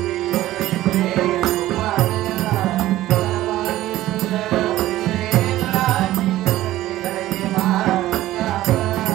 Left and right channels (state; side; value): quieter; left; 15.2 dB